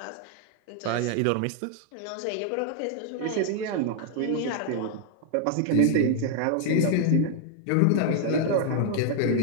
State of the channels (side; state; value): both; different; correlation 0.00